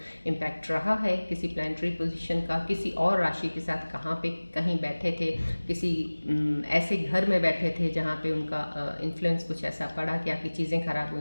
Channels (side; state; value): both; inverted; correlation -1.00